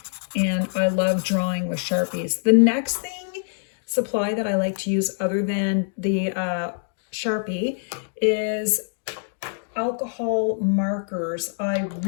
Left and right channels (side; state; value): right; silent; digital silence